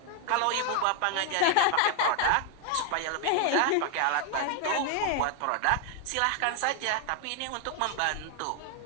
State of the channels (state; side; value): different; both; correlation 0.00